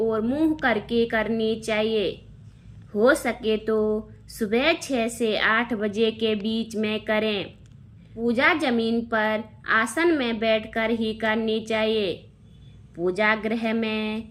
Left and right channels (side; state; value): both; identical; correlation 1.00